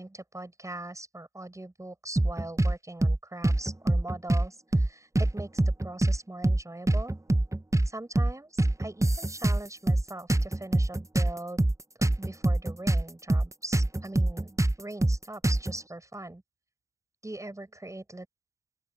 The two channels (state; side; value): late; left; 0.15 ms